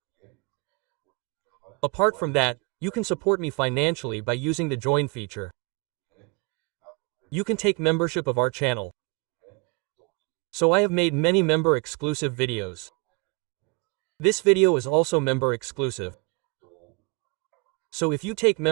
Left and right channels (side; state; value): left; quieter; 28.4 dB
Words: Apart from that, you can support me financially by using the join feature. You can take membership of our channel. So I have made many member exclusive videos. This video is also member exclusive. So if you take